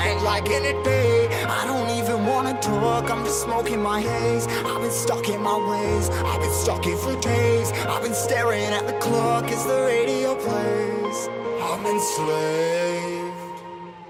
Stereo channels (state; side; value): identical; both; correlation 1.00